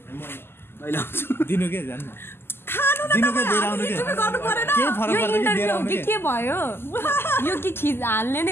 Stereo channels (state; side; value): late; right; 0.11 ms